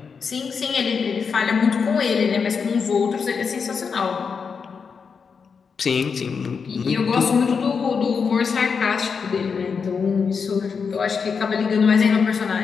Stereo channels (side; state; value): right; quieter; 5.8 dB